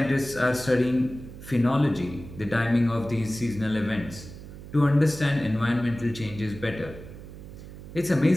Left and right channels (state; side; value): noise; right; hum, 14 dB below the sound